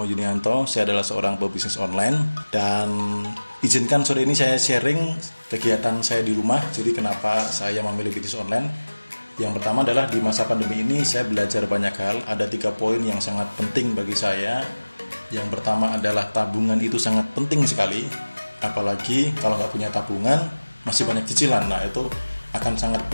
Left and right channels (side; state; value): both; inverted; correlation -1.00